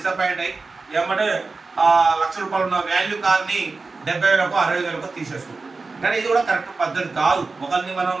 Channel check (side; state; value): left; quieter; 4.0 dB